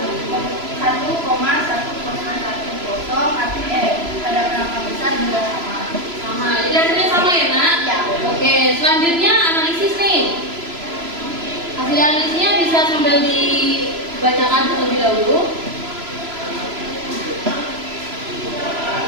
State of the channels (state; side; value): late; left; 3.0 ms